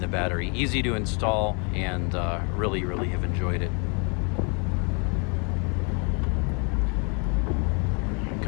the battery. Easy to install, and really have enjoyed it. Here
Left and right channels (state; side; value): quieter; right; 35.5 dB